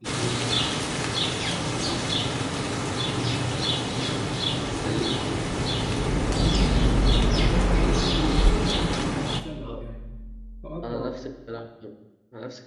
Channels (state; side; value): identical; both; correlation 1.00